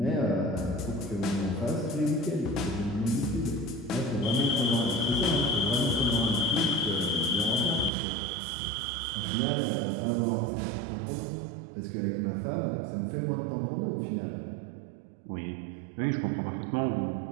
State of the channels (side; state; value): left; drops out; at 7.9 s